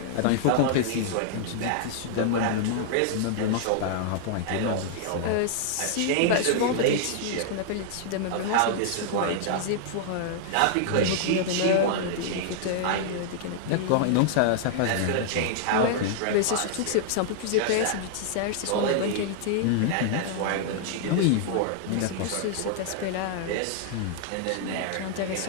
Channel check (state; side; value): different; both; correlation -0.01